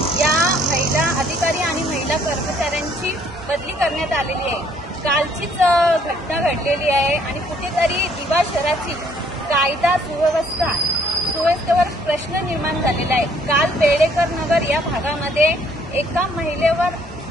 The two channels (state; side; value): normal; both; correlation 0.63